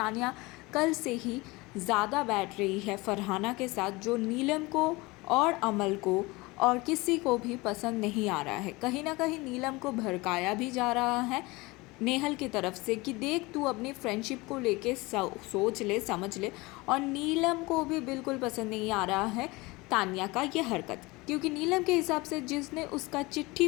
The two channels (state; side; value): quieter; right; 23.1 dB